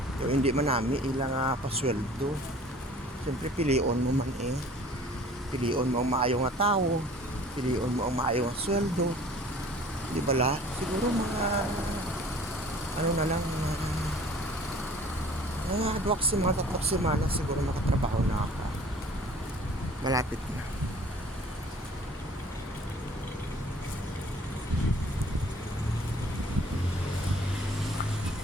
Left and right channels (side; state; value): both; normal; correlation 0.50